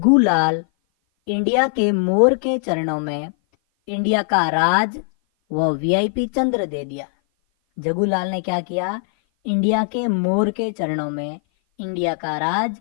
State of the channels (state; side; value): silent; right; 56 dB below the other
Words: लाल इंडिया के मोर के चरणों में इंडिया का राज व वीआईपी चंद्र दे दिया। जग्गू लाल ने क्या किया? इंडिया के मोर के चरणों में इंडिया का राज